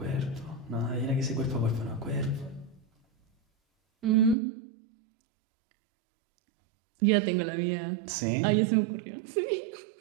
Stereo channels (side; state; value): left; drops out; at 4.4 s